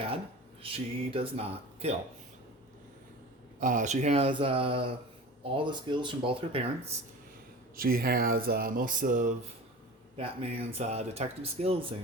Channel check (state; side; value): normal; both; correlation 0.35